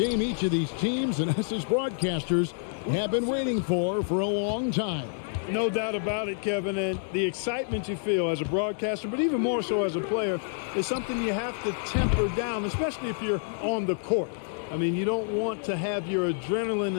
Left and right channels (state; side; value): silent; right; digital silence